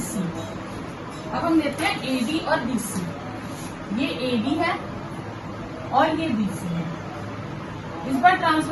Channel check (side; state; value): both; identical; correlation 1.00